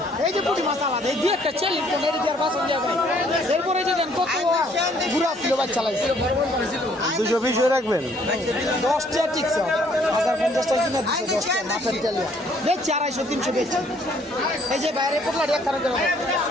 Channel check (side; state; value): both; normal; correlation 0.63